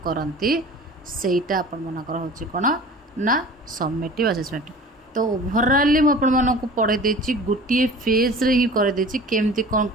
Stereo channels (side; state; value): both; normal; correlation 0.42